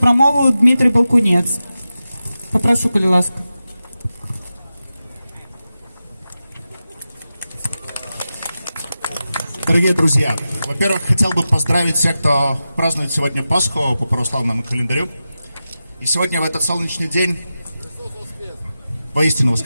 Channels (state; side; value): inverted; both; correlation -0.92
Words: Дмитрий Балкунець. Попрошу, коли ласка. Дорогие друзья, во-первых, хотел бы поздравить всех, кто празднует сегодня Пасху по православному календарю. И сегодня в этот солнечный день, воистину